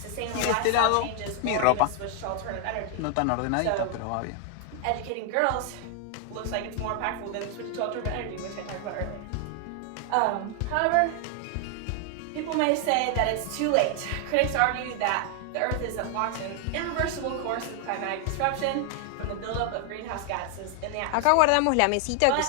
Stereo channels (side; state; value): both; different; correlation 0.00